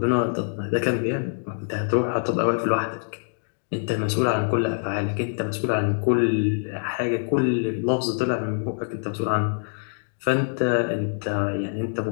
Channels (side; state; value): right; silent; digital silence